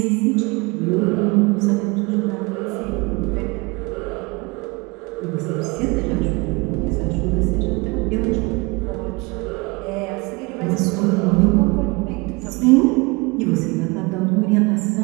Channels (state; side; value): quieter; left; 26.4 dB